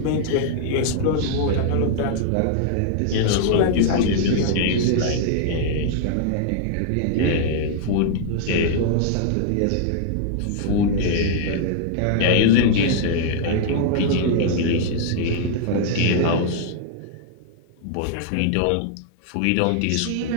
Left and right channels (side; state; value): both; different; correlation -0.01